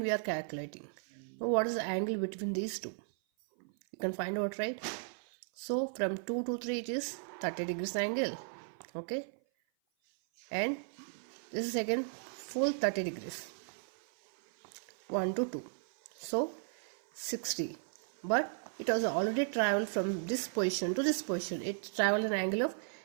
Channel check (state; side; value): silent; left; 54 dB below the other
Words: are calculating. Now what is the angle between these two? You can find out, right? So from 2 to 3 it is 30 degrees angle, okay? And this is again full 30 degrees. 1 to 2. So 60. But it was already traveled from this position to this position. It traveled an angle of